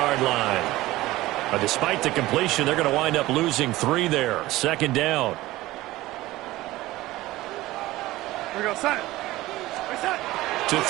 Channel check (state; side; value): quieter; left; 17.6 dB